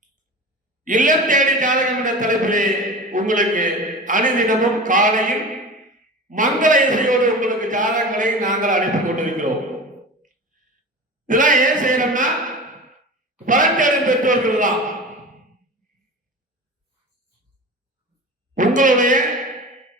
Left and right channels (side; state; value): both; normal; correlation 0.33